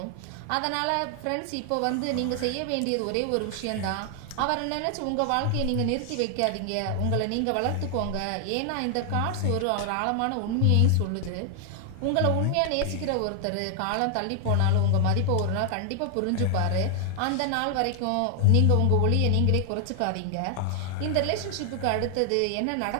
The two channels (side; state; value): both; different; correlation 0.00